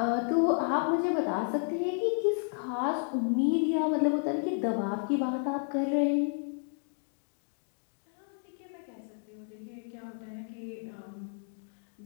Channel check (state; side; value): silent; right; 57 dB below the other